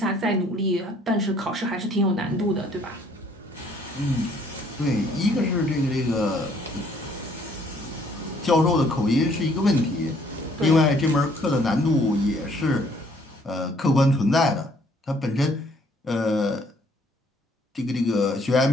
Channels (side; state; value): both; normal; correlation 0.63